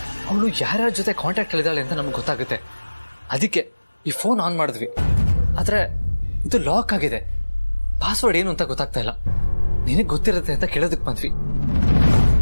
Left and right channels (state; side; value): inverted; both; correlation -1.00